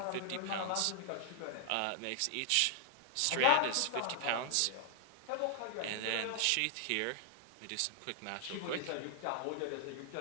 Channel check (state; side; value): different; both; correlation 0.00